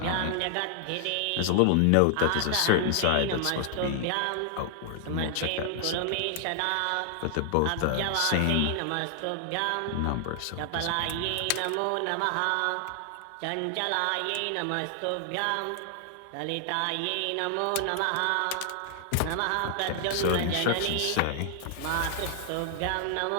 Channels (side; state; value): both; different; correlation 0.00